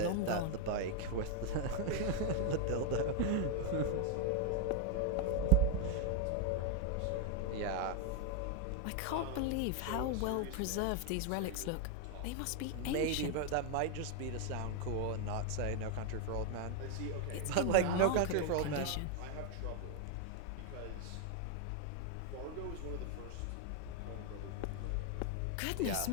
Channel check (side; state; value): both; different; correlation 0.01